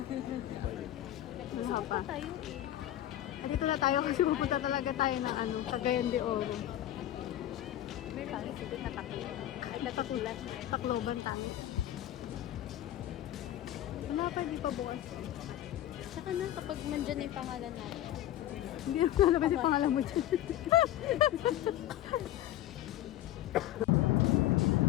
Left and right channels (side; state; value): right; quieter; 13.1 dB